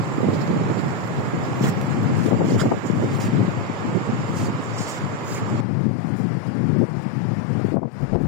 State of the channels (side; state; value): right; drops out; at 5.7 s